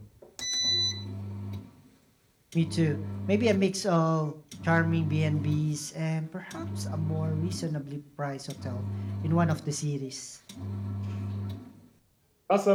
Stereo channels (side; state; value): both; identical; correlation 1.00